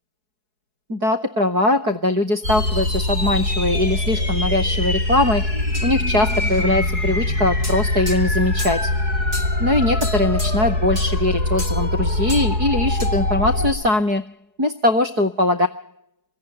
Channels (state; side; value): late; left; 4.7 ms